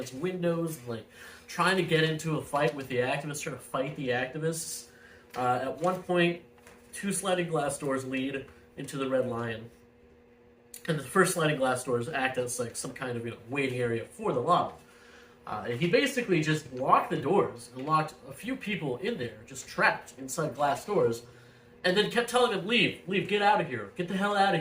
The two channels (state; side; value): identical; both; correlation 1.00